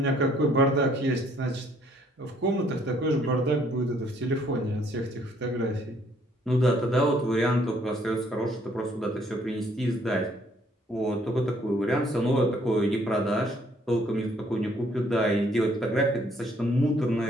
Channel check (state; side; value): normal; both; correlation 0.65